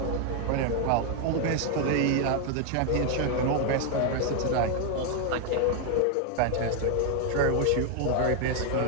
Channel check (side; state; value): both; different; correlation 0.00